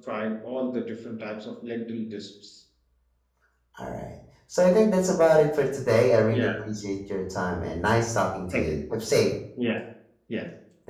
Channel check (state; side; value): identical; both; correlation 1.00